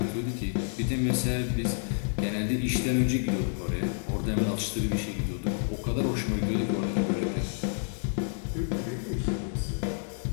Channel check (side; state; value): right; silent; digital silence